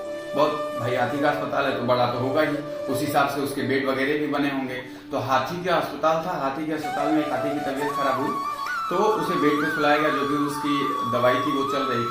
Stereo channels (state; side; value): identical; both; correlation 1.00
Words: बहुत भाई हाथी का अस्पताल है तो बड़ा तो होगा ही, उस हिसाब से उसके बेड वगैरह भी बने होंगे। तो हाथी का अस्पताल था, हाथी के अस्पताल में एक हाथी की तबीयत खराब हुई तो उसे बेड पे सुलाया गया। जो भी उसकी दवाई थी वो चल रही